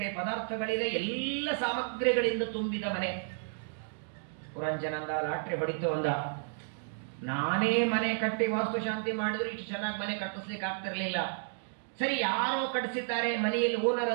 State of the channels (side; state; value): left; silent; digital silence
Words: ಪದಾರ್ಥಗಳಿದೆ, ಎಲ್ಲ ಸಾಮಗ್ರಿಗಳಿಂದ ತುಂಬಿದ ಮನೆ. ಪುರಂಜನಂದ ಲಾಟ್ರಿ ಹೊಡಿತು ಅಂದ, ನಾನೇ ಮನೆ ಕಟ್ಟಿ ವಾಸ್ತುಶಾಂತಿ ಮಾಡಿದ್ರು ಇಷ್ಟು ಚೆನ್ನಾಗಿ ಮನೆ ಕಟ್ಟಿಸ್ಲಿಕ್ಕೆ ಆಗ್ತಿರ್ಲಿಲ್ಲ. ಸರಿ, ಯಾರೋ ಕಟ್ಟಿಸಿದ್ದಾರೆ, ಮನೆಯಲ್ಲಿ ಓನರ್